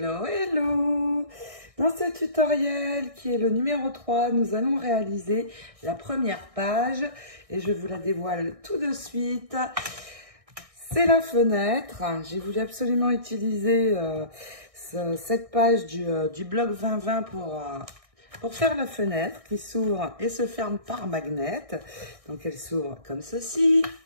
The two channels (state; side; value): late; left; 1.6 ms